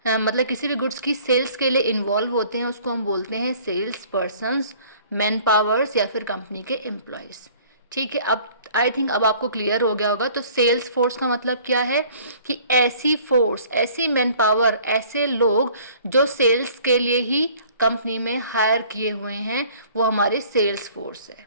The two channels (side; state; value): both; inverted; correlation -0.53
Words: मतलब किसी भी गुड्स की सेल्स के लिए इन्वॉल्व होते हैं उसको हम बोलते हैं सेल्स पर्सन्स, मैन पावर्स या फिर कंपनी के एम्प्लॉयज। ठीक है, अब आई थिंक अब आपको क्लियर हो गया होगा। तो सेल्स फोर्स का मतलब क्या है कि ऐसी फोर्स, ऐसी मैन पावर, ऐसे लोग जो सेल्स के लिए ही कंपनी में हायर किए हुए हैं, वो हमारे सेल्स फोर्स है।